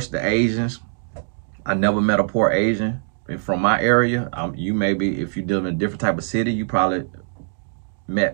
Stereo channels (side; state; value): left; silent; digital silence